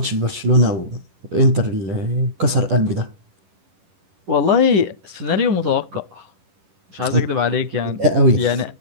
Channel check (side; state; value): left; late; 10 ms